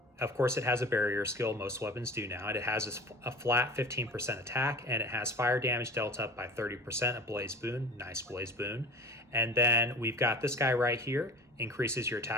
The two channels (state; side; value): normal; both; correlation 0.39